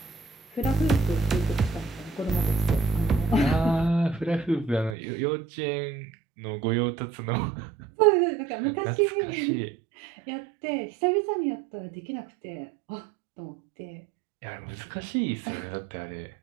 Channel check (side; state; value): left; drops out; at 5.0 s